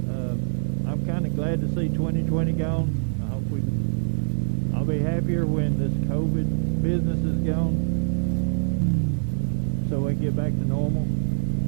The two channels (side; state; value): left; silent; 58 dB below the other